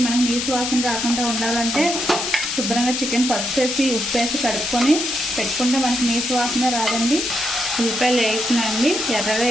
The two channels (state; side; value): noise; left; hiss, 2 dB below the sound